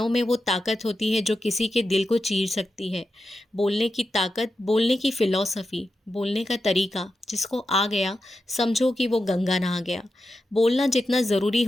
में वो ताकत होती है जो किसी के दिल को चीर सकती है। बोलने की ताकत, बोलने की फ़िलॉसफ़ी, बोलने का तरीका जिसको आ गया समझो कि वो गंगा नहा गया। बोलना जितना ज़रूरी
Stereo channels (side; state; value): both; normal; correlation 0.89